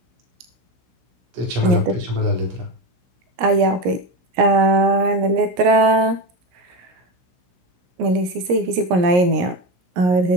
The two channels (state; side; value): late; left; 17 ms